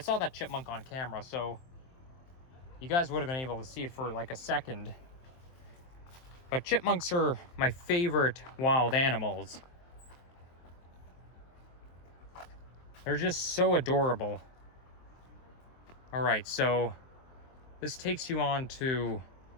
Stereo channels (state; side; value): late; right; 23 ms